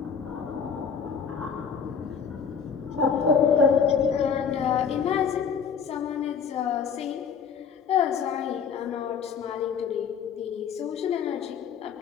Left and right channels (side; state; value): right; quieter; 6.6 dB